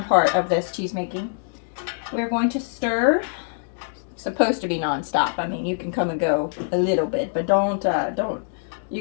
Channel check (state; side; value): silent; right; digital silence